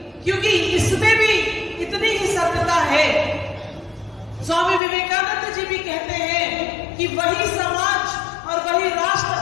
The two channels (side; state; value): right; drops out; at 4.8 s